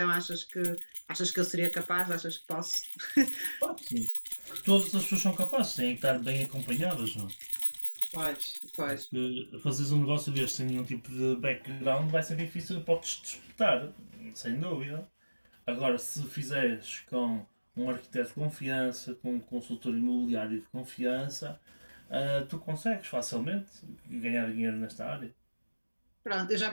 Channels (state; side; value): inverted; both; correlation -1.00